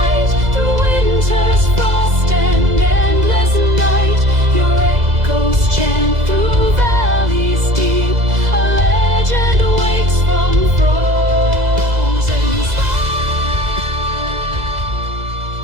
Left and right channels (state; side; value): late; left; 2.0 ms